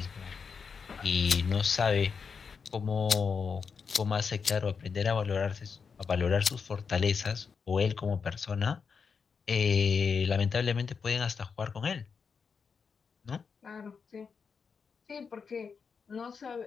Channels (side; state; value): right; quieter; 5.8 dB